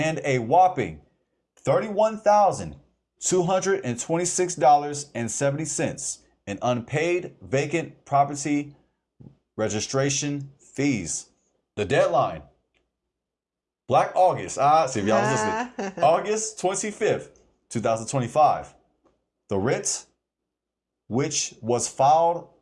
a whopping $31,226.70 in unpaid vacant property registration fees. The deadline, Black August, see if y'all was listening, August 25th, 2025. The writ, which was filed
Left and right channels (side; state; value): both; identical; correlation 1.00